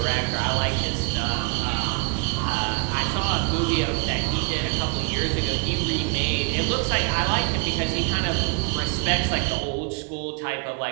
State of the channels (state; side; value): quieter; left; 33.2 dB